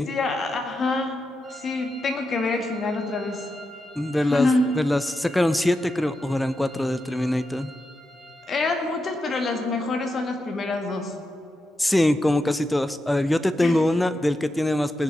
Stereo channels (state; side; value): normal; both; correlation 0.87